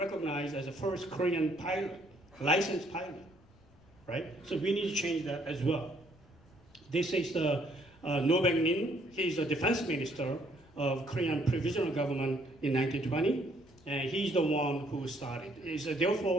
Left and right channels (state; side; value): noise; left; rumble, 28 dB below the sound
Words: as the first Korean pilot, licensed pilot, right? So we need to change that as well. This is the No Baek-min. He's the defense minister of Korean provisional government in 1920, and he's the one who started.